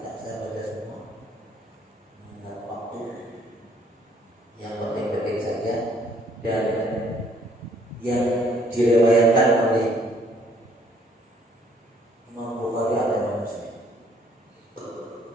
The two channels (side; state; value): both; normal; correlation 0.63